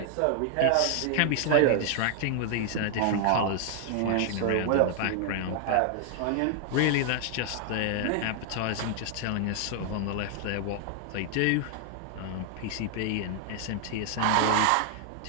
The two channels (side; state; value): both; different; correlation 0.00